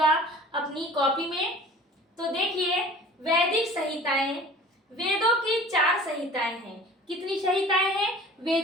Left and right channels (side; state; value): both; normal; correlation 0.44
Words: अपनी कॉपी में। तो देखिए, वैदिक संहिताएं, वेदों की 4 संहिताएं हैं। कितनी संहिताएं हैं?